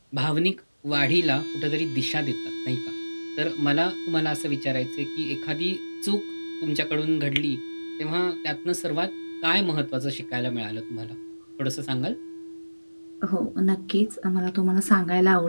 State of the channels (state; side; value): inverted; both; correlation -1.00